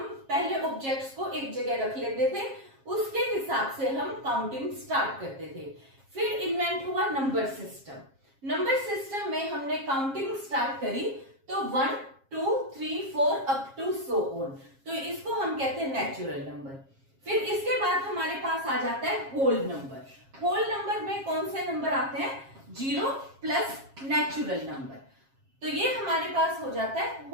पहले ऑब्जेक्ट्स को एक जगह रख लेते थे, उसके हिसाब से हम काउंटिंग स्टार्ट करते थे। फिर इन्वेंट हुआ नंबर सिस्टम। नंबर सिस्टम में हमने काउंटिंग स्टार्ट करी तो 1 2 3 4 अप टू सो ऑन, तो इसको हम कहते हैं नेचुरल नंबर। फिर इसके बाद हमारे पास आ जाता है होल नंबर। होल नंबर में कौन से नंबर आते हैं, 0 प्लस नेचुरल नंबर, तो ये हमारे पास हो जाता है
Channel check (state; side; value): late; left; 7.4 ms